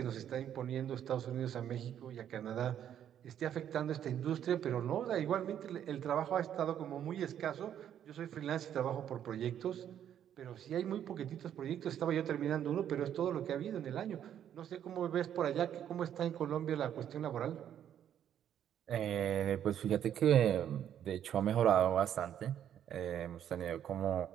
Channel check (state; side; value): quieter; left; 10.0 dB